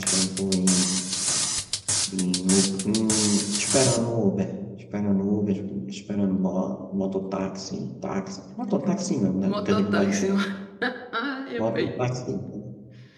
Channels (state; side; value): identical; both; correlation 1.00